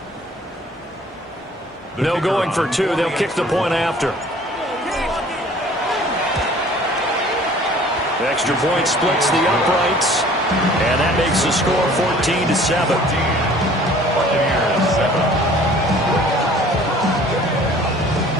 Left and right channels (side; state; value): both; normal; correlation 0.51